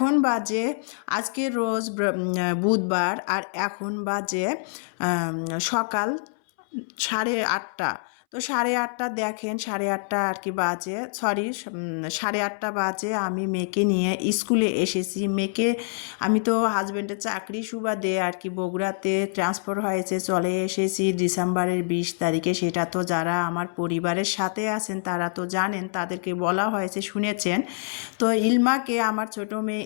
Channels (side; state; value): right; silent; 61 dB below the other